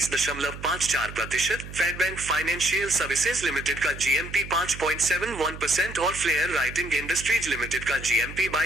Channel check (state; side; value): noise; right; hum, 12 dB below the sound